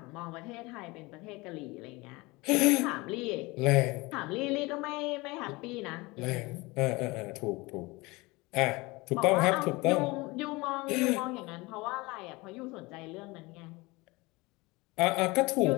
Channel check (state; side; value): quieter; right; 23.5 dB